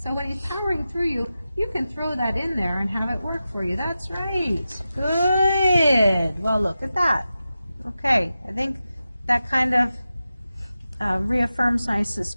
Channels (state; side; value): inverted; both; correlation -0.92